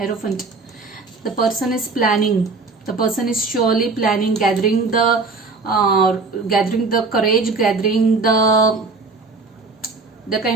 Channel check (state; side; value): quieter; left; 4.1 dB